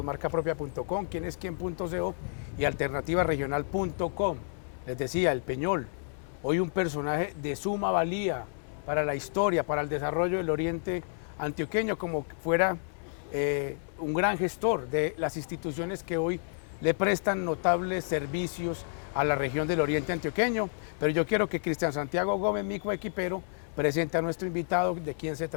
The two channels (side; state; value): right; silent; 58 dB below the other